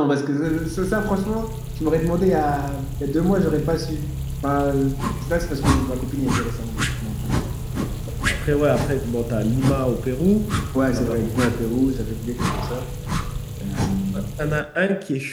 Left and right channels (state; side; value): identical; both; correlation 1.00